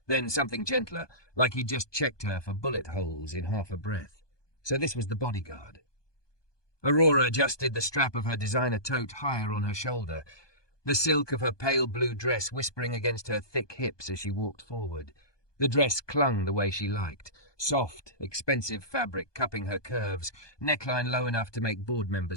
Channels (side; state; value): right; late; 1.2 ms